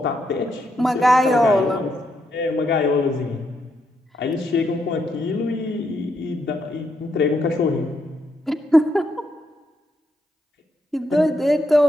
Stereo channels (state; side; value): normal; both; correlation 0.79